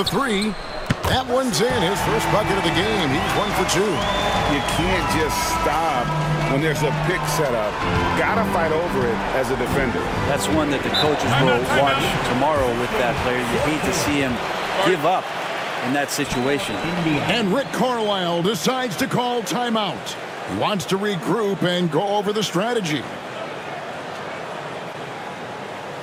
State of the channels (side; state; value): both; identical; correlation 1.00